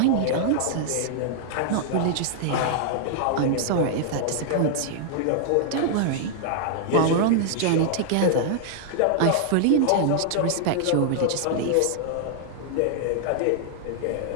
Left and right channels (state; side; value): different; both; correlation -0.01